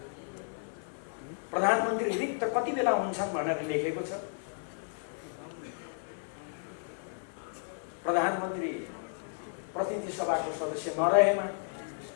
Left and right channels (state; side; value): silent; right; 56 dB below the other